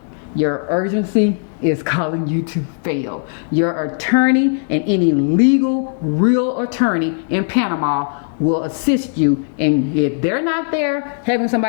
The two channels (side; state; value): right; silent; digital silence